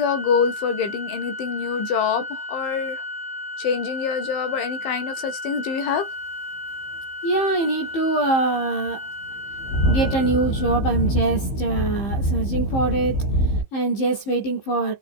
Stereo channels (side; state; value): right; late; 15 ms